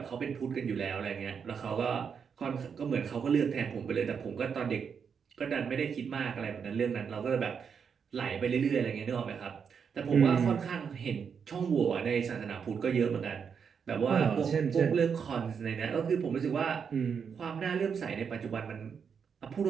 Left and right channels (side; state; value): left; quieter; 6.6 dB